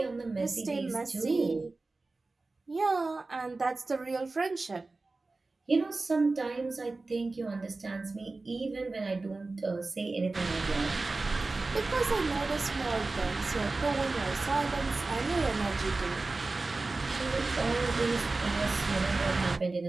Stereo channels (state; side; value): quieter; left; 3.5 dB